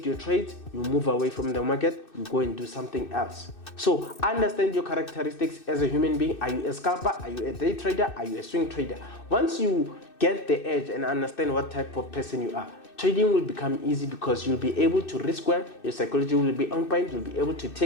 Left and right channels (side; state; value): right; late; 2.6 ms